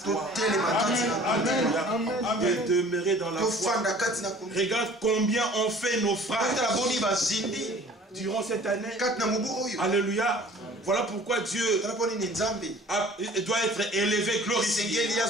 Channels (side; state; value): both; normal; correlation 0.49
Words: De demeurer dans la foi. Regarde combien on fait nos phrases durant cette année. Alléluia. Voilà pourquoi Dieu doit être élevé, glorifié. Il